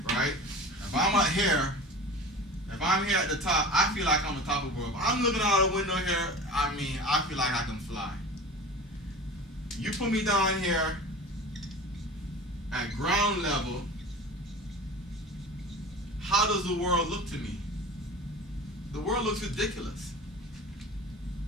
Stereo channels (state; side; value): normal; both; correlation 0.36